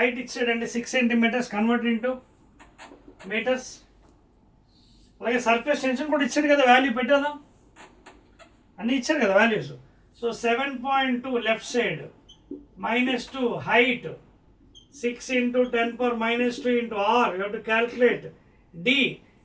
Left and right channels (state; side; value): identical; both; correlation 1.00